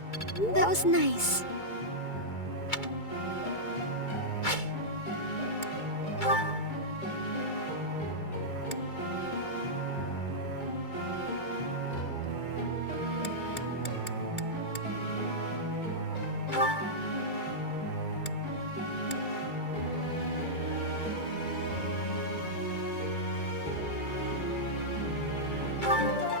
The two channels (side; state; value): right; late; 2.3 ms